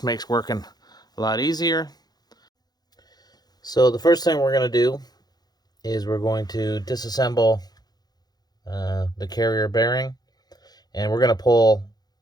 makes working a lot easier. So the first thing we're going to do is we're going to disassemble the carrier bearing, and we're going to pull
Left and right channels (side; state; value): right; late; 0.19 ms